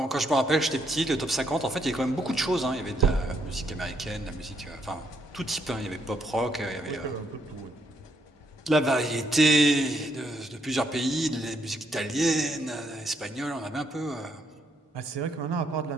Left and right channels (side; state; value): both; normal; correlation 0.74